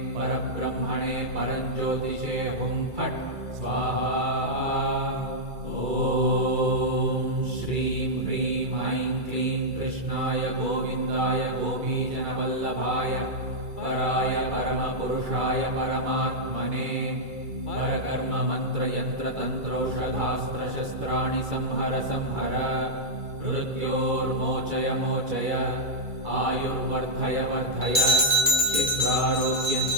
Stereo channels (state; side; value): late; left; 2.3 ms